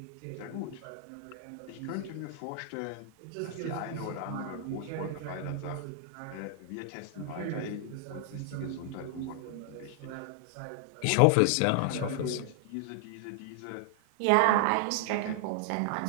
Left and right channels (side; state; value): both; different; correlation 0.00